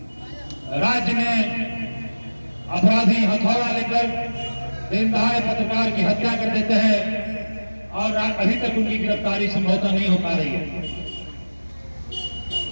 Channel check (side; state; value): both; inverted; correlation -1.00